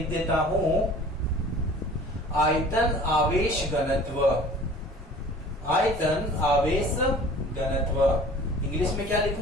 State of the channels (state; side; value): normal; both; correlation 0.46